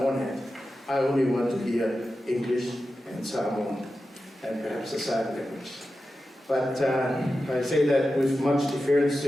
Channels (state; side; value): normal; both; correlation 0.92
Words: hat, I only want to hear English and Samoan and perhaps a sign language. But I say that with much deference